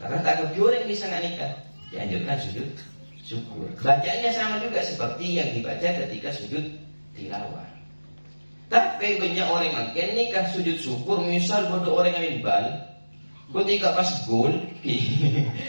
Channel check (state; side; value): inverted; both; correlation -1.00